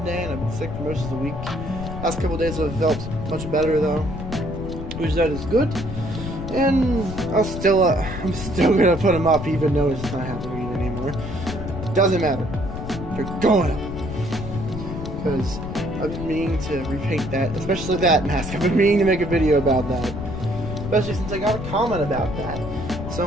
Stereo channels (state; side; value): noise; left; rumble, 7 dB below the sound